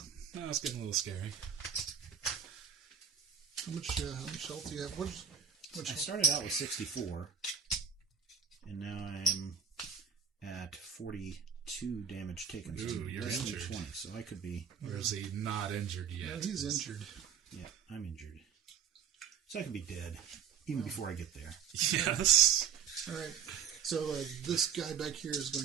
now it's getting a little scary. How much health do you have? I started out with 64, and now I'm at 42 damage taken. So Ooh, you're less than injured. 20, so I could be. Or is he not injured yet? No, he's injured. Yeah, I'm injured. So I could be dead even before I get there. Yes. All right. So this guy back here is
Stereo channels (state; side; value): quieter; left; 7.4 dB